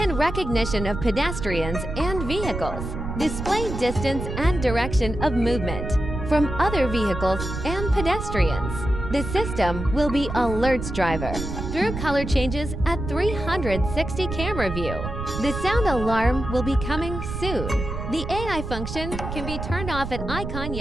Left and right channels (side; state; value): right; noise; rumble, 6 dB below the sound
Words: recognition of pedestrians and vehicles, display distance and direction of movement from other vehicles and pedestrians. The system will be alerts driver through color changes at 360 camera view. The sound alarm will be coming soon. The AI function can be turned off at icon